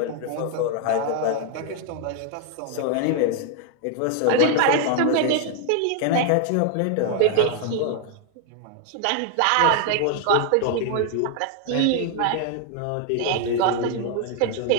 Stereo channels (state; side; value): different; both; correlation 0.00